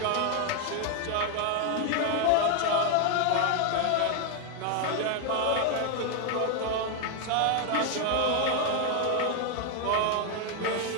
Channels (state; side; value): different; both; correlation 0.00